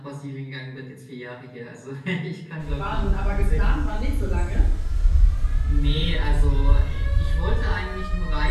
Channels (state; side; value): identical; both; correlation 1.00